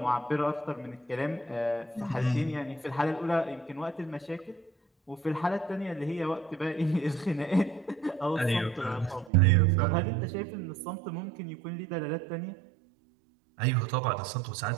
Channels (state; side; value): drops out; left; at 9.3 s